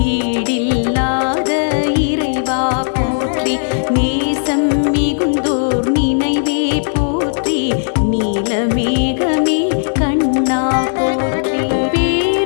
ஈடில்லாத இறைவா போற்றி நேசம் மிகுந்தோர் நினைவே போற்றி நீலமேகமே கண்ணா போற்றி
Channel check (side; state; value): right; silent; 68 dB below the other